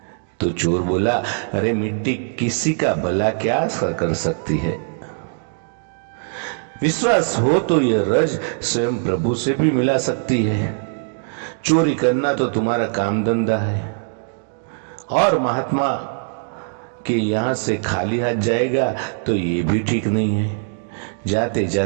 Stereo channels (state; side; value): silent; left; digital silence